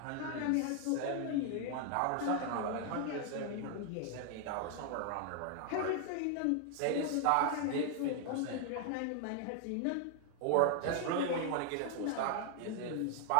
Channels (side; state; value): both; different; correlation 0.00